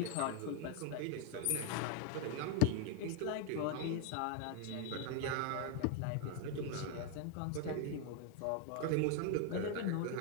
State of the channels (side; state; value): both; different; correlation 0.01